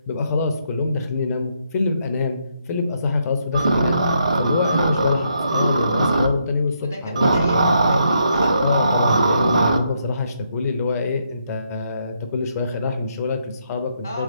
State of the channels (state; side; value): inverted; both; correlation -0.76